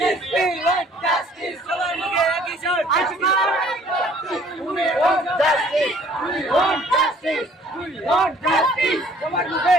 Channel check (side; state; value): both; normal; correlation 0.57